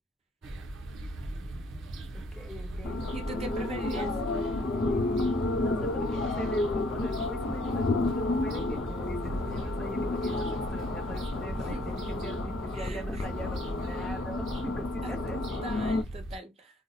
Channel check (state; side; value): normal; both; correlation 0.63